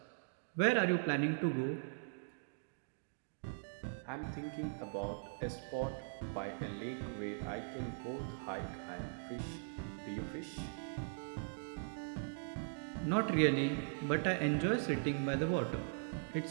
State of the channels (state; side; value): silent; left; digital silence